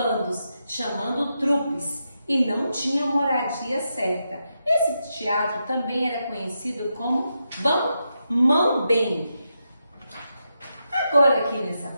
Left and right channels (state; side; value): inverted; both; correlation -0.85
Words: chamando trupes, e não tinham moradia certa. Esse teatro também era conhecido como mambembe. Agora aqui nessa